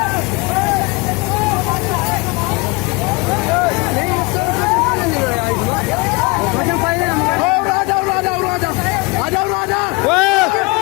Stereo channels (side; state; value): right; quieter; 26.4 dB